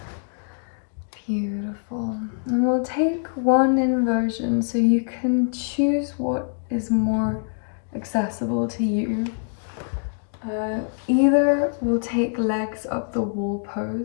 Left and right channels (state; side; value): silent; right; digital silence